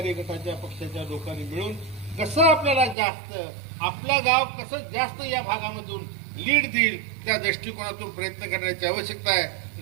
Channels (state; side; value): drops out; left; at 3.0 s